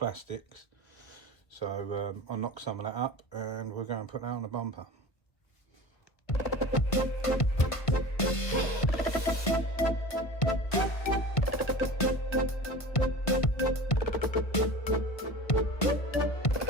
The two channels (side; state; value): right; late; 1.5 ms